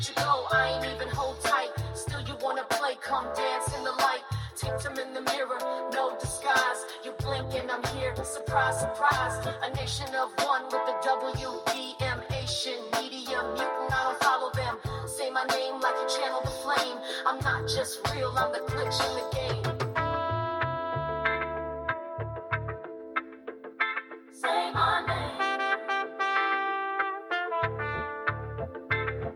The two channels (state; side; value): identical; both; correlation 1.00